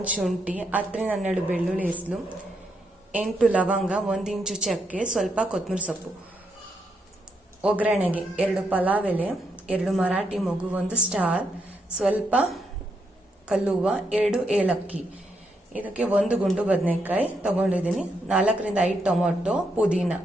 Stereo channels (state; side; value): normal; both; correlation 0.79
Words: ಶುಂಠಿ, 10ರಿಂದ 12 ಬೆಳ್ಳುಳ್ಳಿ ಹೆಸರು, 8 ಲವಂಗ, 1 ಇಂಚು ಚಕ್ಕೆ, ಸ್ವಲ್ಪ ಕೊತ್ತಂಬರಿ ಸೊಪ್ಪು. ಒಗ್ಗರಣೆಗೆ 2 ಪಲಾವ್ ಎಲೆ, 2 ಮರಾಠಿ ಮೊಗ್ಗು, 1 ಸ್ಟಾರ್, ಸ್ವಲ್ಪ ಕಲ್ಲುವ, 2 ಏಲಕ್ಕಿ. ಇದಕ್ಕೆ 1 ಗುಂಡು ಬದನೆಕಾಯಿ ತಗೊಂಡಿದ್ದೀನಿ, 4ರಿಂದ 5 ಟೊಮೊಟೊ, ಪುದೀನ.